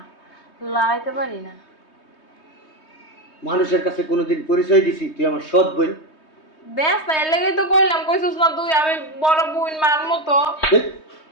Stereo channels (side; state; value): right; late; 3.2 ms